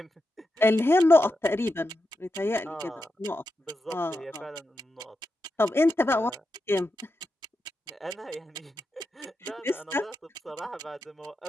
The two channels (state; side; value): normal; both; correlation 0.88